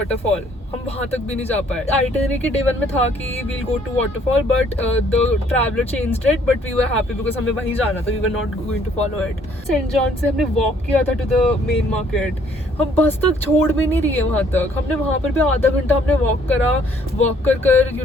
हम वहाँ तक भी नहीं जा पाए. Itinerary के day 1 में था कि we'll go to waterfall, but the traveler changed it. But we were happy because हमें वहीं जाना था. We were not going to follow it. St. John से हमने walk किया था to the main market. हम बस तक छोड़ भी नहीं रही है वहाँ तक. हमने वहाँ पर भी आधा घंटा हमने walk करा. Walk कर you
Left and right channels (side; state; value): both; normal; correlation 0.63